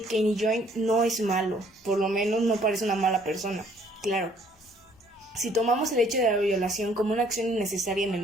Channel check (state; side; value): normal; both; correlation 0.61